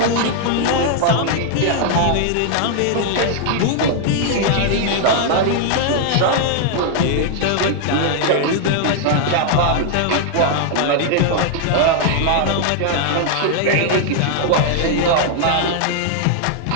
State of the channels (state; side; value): different; both; correlation 0.00